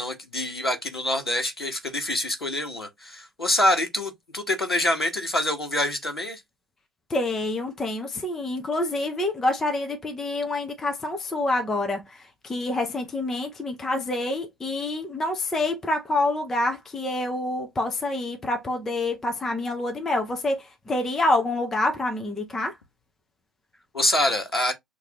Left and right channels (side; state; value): both; normal; correlation 0.70